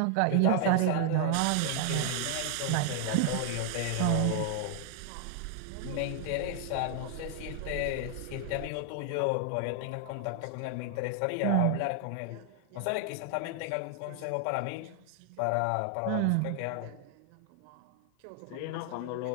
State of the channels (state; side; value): different; both; correlation 0.00